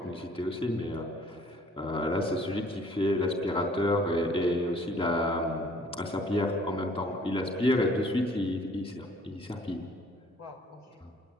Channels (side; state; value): both; normal; correlation 0.57